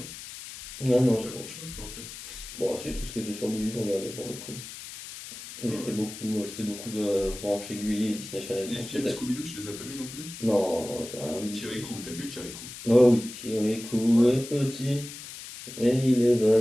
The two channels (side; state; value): left; noise; hiss, 12 dB below the sound